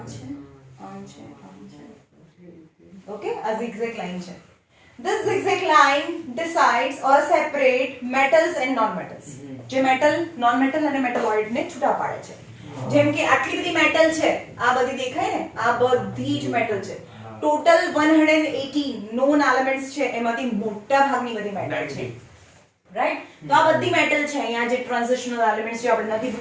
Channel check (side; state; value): both; identical; correlation 1.00